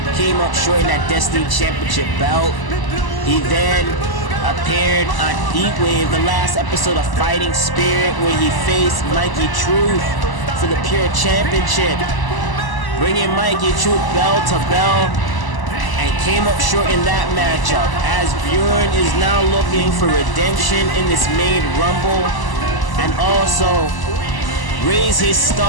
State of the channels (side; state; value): right; late; 1.0 ms